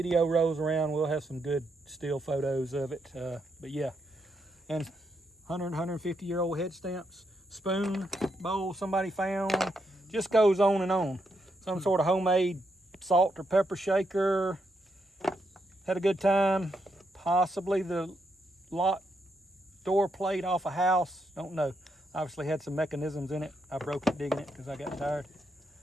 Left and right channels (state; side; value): normal; both; correlation 0.80